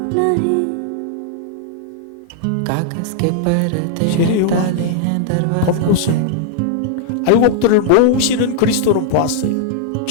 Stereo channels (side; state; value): both; different; correlation -0.01